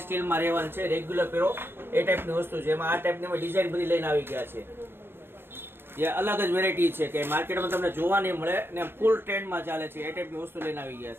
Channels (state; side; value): late; left; 0.11 ms